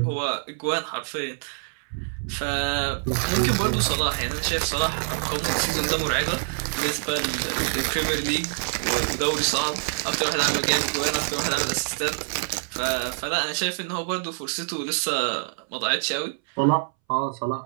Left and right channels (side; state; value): left; silent; 61 dB below the other